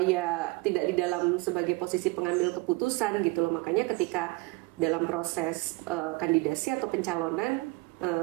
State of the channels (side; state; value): left; quieter; 23.3 dB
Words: ya tidak di dalam sebagai posisi pengambil keputusan gitu loh. Makanya ketika dalam proses kandidasi atau pencalonan